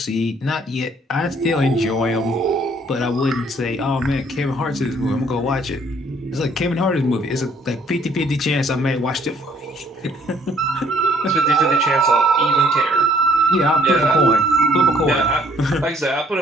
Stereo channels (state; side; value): normal; both; correlation 0.63